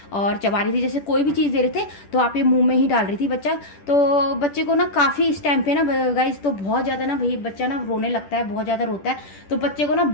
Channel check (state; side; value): late; right; 10 ms